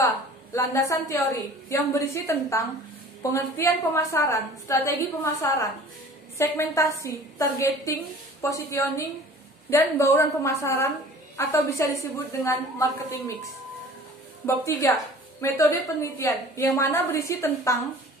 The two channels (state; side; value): normal; both; correlation 0.46